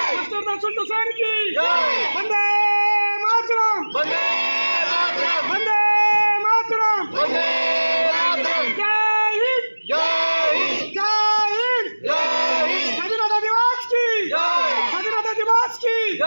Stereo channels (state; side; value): inverted; both; correlation -1.00